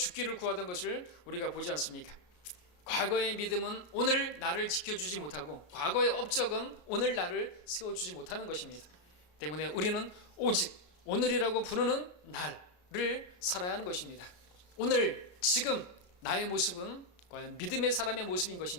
구하던 것을 우리가 보지 않습니까? 과거의 믿음은 오늘 나를 지켜주지 못하고 과거의 업적은 오늘 나를 세워주지 못하는 것입니다. 때문에 우리는 오직 오늘이라고 부르는 날을 살아야 하는 것입니다. 오늘 지금 나의 모습은 과연 믿음의 사람의 모습인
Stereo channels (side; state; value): right; late; 34 ms